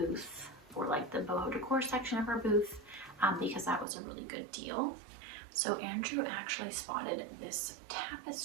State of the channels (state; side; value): drops out; left; at 3.9 s